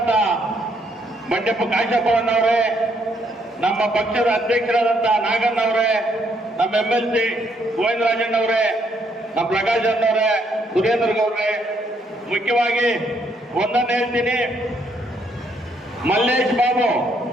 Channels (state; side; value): normal; both; correlation 0.71